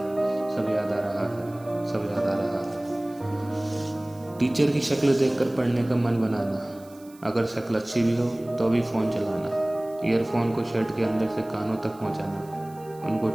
सब याद आ रहा है। सब याद आ रहा है। टीचर की शक्ल देखकर पढ़ने का मन बनाना, अगर शक्ल अच्छी भी हो तो भी फ़ोन चलाना, ईयरफोन को शर्ट के अंदर से कानों तक पहुंचाना, उनको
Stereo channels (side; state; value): right; noise; hiss, 25 dB below the sound